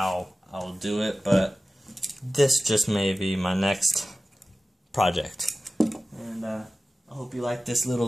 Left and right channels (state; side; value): normal; both; correlation 0.95